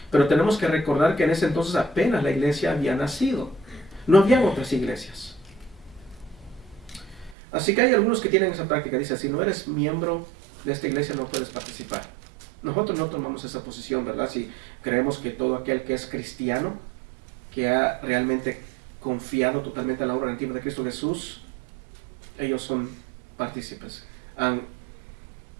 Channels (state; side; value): drops out; left; at 7.4 s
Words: Pero tenemos que recordar que en ese entonces apenas la iglesia había nacido. No habían otras iglesias. Así que hay algunos que tienen esa práctica. Dice, si no eres miembro de esta iglesia no puedes participar. Nosotros no tomamos esa posición, ¿verdad? Si creemos que todo aquel que es cristiano, que ha realmente confiado totalmente en la obra redentiva de Cristo Jesús, ellos son partícipes. Han